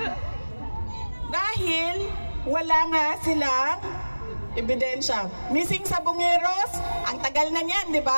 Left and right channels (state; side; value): inverted; both; correlation -1.00